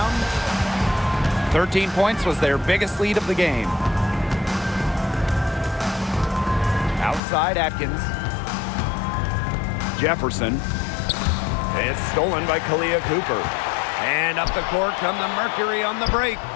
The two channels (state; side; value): drops out; right; at 7.2 s